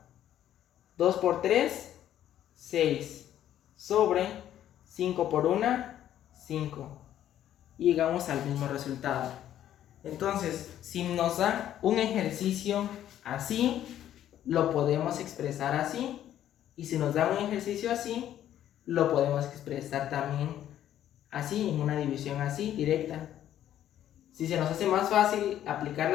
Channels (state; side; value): quieter; right; 11.4 dB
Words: 2 por 3, 6. Sobre 5 por 1, 5. Y llegamos al mismo resultado. Entonces, si nos da un ejercicio así, lo podemos expresar así. Y si nos da un ejercicio así, lo podemos expresar también así, en una división así, directa. Si se nos hace más fácil aplicar